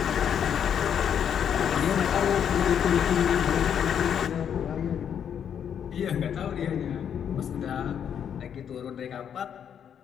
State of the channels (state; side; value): quieter; right; 8.5 dB